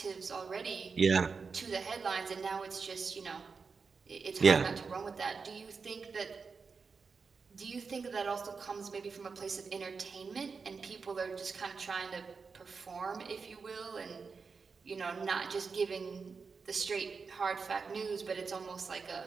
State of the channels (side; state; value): left; quieter; 5.0 dB